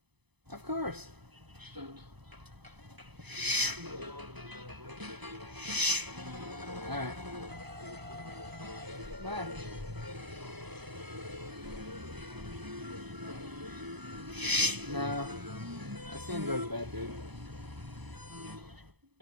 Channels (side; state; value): left; late; 0.99 ms